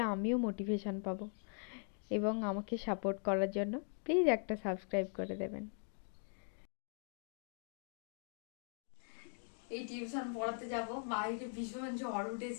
আমিও মোটিভেশন পাবো, এবং আমাকে সাপোর্ট করার জন্য প্লিজ একটা সাবস্ক্রাইব করে দেবেন। এই টিউশন পড়াতে যাব, বাইরে ভীষণ ঝড়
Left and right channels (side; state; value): right; silent; 50 dB below the other